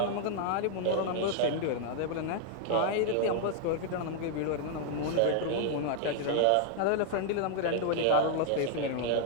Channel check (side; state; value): both; different; correlation 0.00